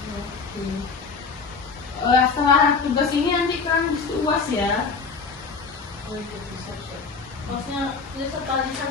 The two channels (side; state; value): right; quieter; 4.8 dB